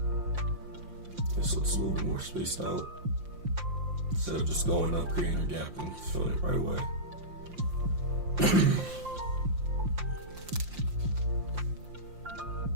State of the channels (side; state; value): left; late; 5.7 ms